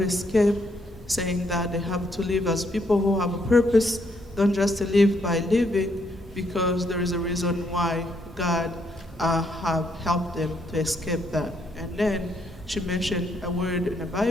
escaped, saying that they have to live as people who have a purpose, don't just live by living, because there is a reason why God have helped them to escape that. And then she mentioned a word in the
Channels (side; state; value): both; normal; correlation 0.73